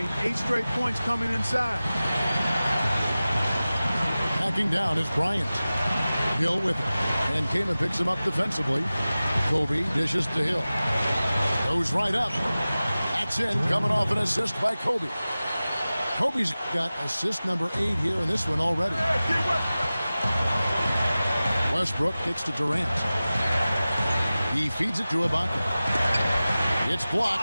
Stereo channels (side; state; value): both; inverted; correlation -0.97